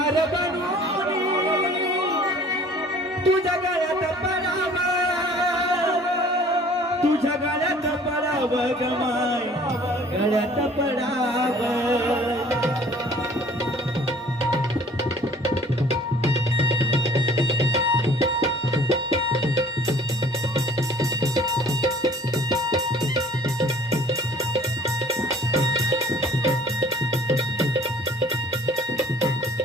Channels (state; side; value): normal; both; correlation 0.52